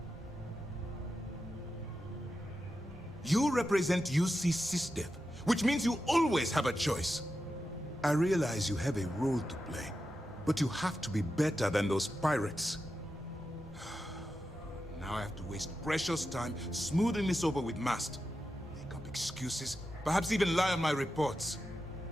You represent UC Sys-Def, which means you always have a choice. I realize you have a role to play, but you have to be better than those pirates. Now I have to waste precious time smoothing this over with Mast. Make up excuses, perhaps even lie on my reports.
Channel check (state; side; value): normal; both; correlation 0.90